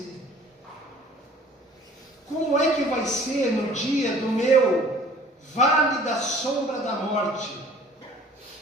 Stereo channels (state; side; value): normal; both; correlation 0.50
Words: Como é que vai ser no dia do meu vale da sombra da morte?